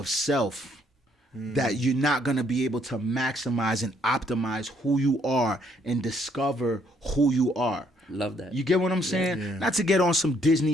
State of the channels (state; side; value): normal; both; correlation 0.68